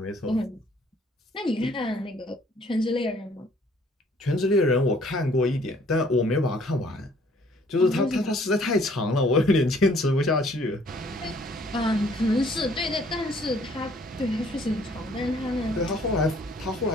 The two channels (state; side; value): normal; both; correlation 0.60